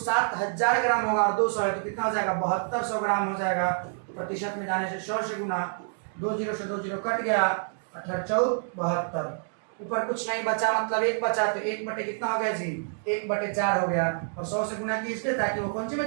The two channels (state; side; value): silent; left; digital silence